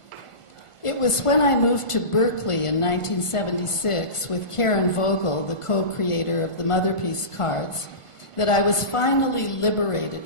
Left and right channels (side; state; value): right; late; 1.5 ms